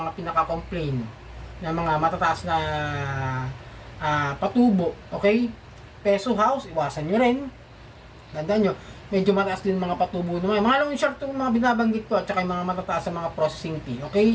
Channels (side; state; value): both; identical; correlation 1.00